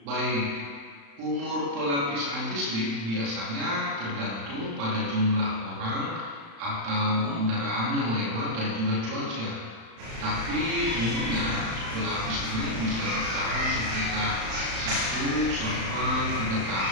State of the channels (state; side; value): late; left; 35 ms